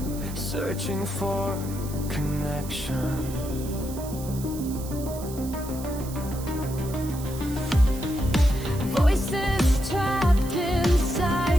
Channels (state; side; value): noise; right; hiss, 14 dB below the sound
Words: searching for connection. voices trapped